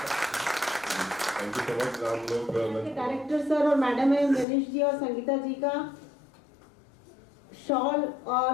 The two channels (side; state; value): right; drops out; at 4.5 s